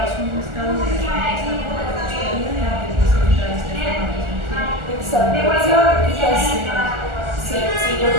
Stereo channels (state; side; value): late; left; 1.4 ms